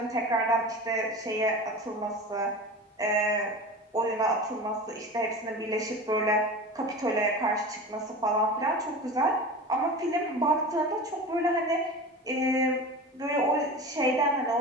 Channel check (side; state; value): both; normal; correlation 0.32